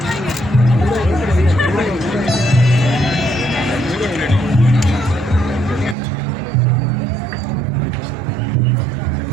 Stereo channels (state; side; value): drops out; left; at 6.0 s